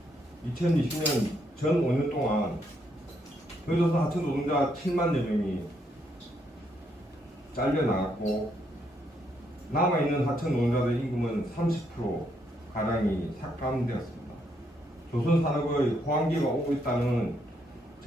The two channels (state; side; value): normal; both; correlation 0.75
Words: 전 5년 동안 조선 하청 노동자 7만여 명이 잘려나갔고 남아있는 하청 노동자들의 임금은 30%가량이 삭감되었습니다. 조선 산업의 호황기가 오고 있다는